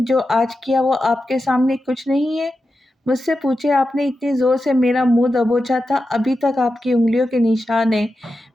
جو آج کیا وہ آپ کے سامنے کچھ نہیں ہے؟ مجھ سے پوچھے آپ نے اتنی زور سے میرا منہ دبوچا تھا، ابھی تک آپ کی انگلیوں کے نشان ہیں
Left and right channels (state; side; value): normal; both; correlation 0.90